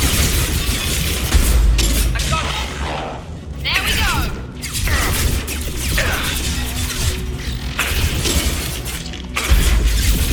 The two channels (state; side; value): identical; both; correlation 1.00